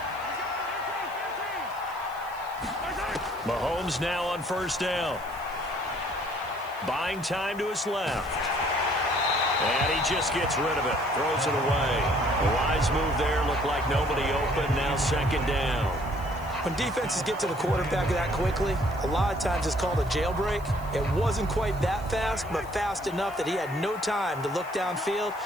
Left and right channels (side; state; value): right; noise; hiss, 23 dB below the sound